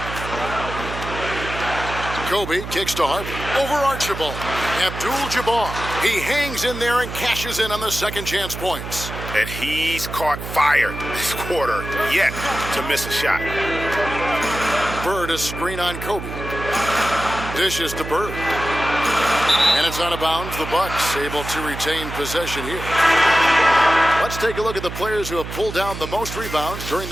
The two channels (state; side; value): noise; right; hum, 8 dB below the sound